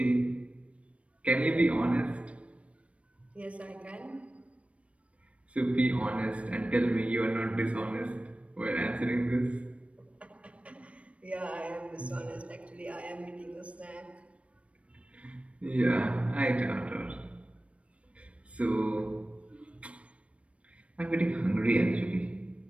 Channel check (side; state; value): left; late; 0.063 ms